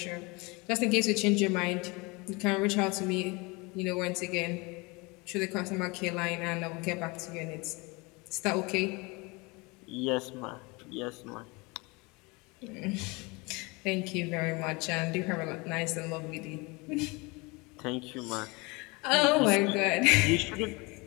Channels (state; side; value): quieter; right; 26.5 dB